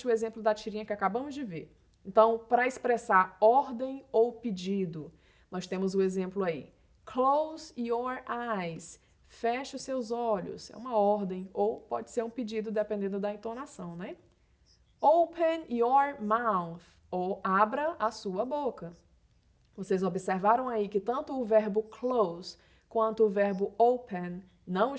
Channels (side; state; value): both; identical; correlation 1.00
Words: o exemplo da tirinha que acabamos de ver. Então, para expressar ordem ou pedido, nós temos o exemplo aí. Close your eyes. Feche os seus olhos. É uma ordem ou pode ser um pedido dependendo da entonação, né? Open your mouth. Ou abra a sua boca. Vocês observaram aí que tanto o verbo close quanto o verbo open não